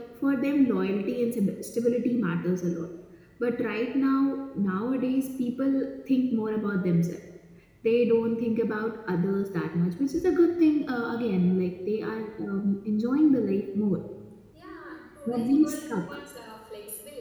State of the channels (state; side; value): identical; both; correlation 1.00